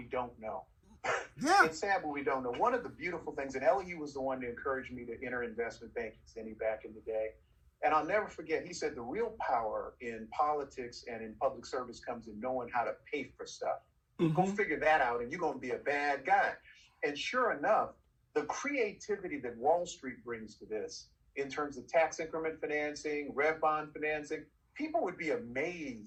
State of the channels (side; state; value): both; identical; correlation 1.00